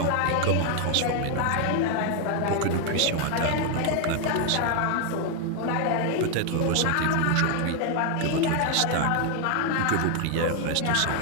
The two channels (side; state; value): both; different; correlation 0.00